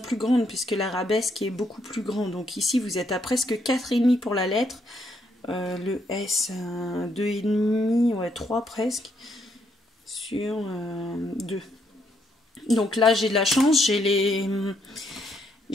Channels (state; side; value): normal; both; correlation 0.74